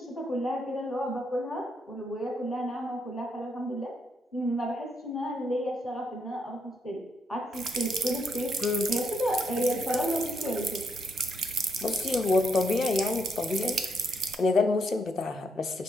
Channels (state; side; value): normal; both; correlation 0.77